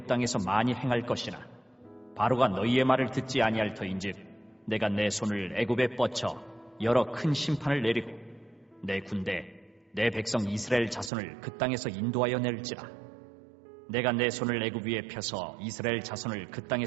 땅에서 많이 행할 것이나 바로가 너희의 말을 듣지 아니할 터인즉 내가 내 손을 애굽에 뻗쳐 여러 큰 심판을 내리고 내 군대 내 백성 이스라엘 자손을 그 땅에서 인도하여 낼지라. 내가 내 손을 애굽 위에 펴서 이스라엘 자손을 그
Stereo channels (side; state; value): left; drops out; at 11.1 s